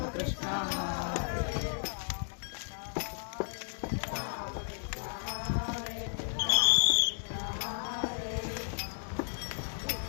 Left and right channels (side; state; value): right; silent; digital silence